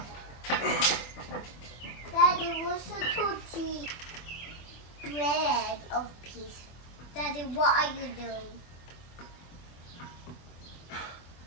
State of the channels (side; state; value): right; late; 24 ms